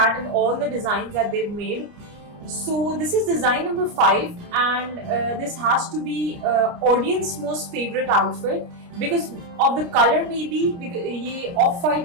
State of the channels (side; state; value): left; late; 29 ms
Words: in all the designs that they've made. So this is design number 5 and this has to be audience most favorite outfit because of the color maybe because ये off